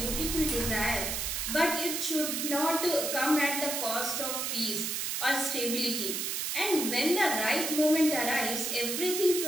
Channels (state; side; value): noise; right; hiss, 1 dB below the sound